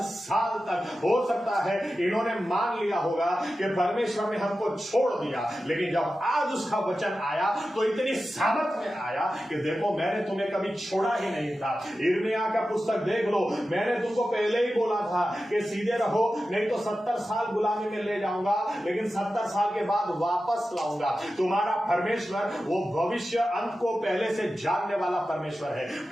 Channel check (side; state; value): both; normal; correlation 0.93